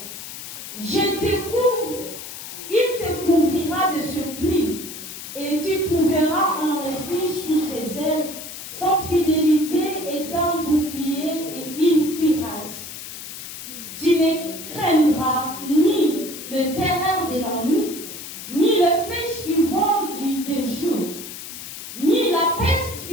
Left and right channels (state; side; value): noise; left; hiss, 11 dB below the sound